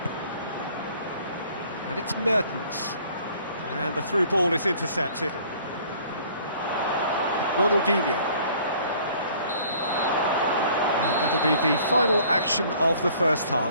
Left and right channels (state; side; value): inverted; both; correlation -0.55